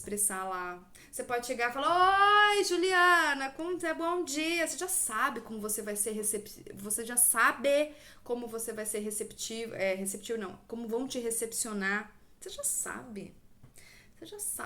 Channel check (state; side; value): identical; both; correlation 1.00